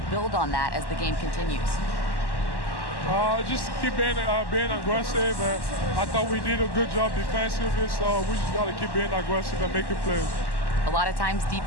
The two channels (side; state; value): right; late; 1.1 ms